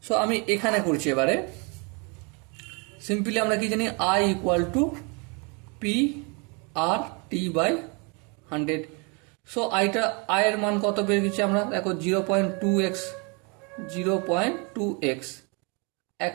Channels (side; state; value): left; quieter; 32.1 dB